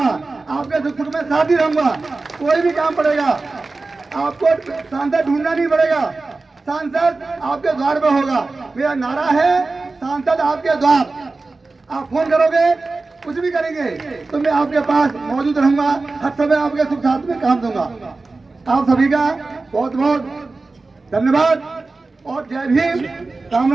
आपके दुख सुख में साथ ही रहूंगा। कोई भी काम पड़ेगा, आपको सांसद ढूंढना नहीं पड़ेगा, सांसद आपके द्वार पे होगा। मेरा नारा है, सांसद आपके द्वार, आप फोन करोगे, कुछ भी करेंगे तो मैं आपके पास मौजूद रहूंगा, हर समय आपके सुख साथ में काम दूंगा। आप सभी का बहुत बहुत धन्यवाद और जय भीम, राम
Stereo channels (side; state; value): left; quieter; 3.6 dB